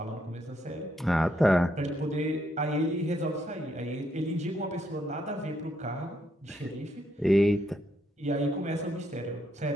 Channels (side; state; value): both; normal; correlation 0.76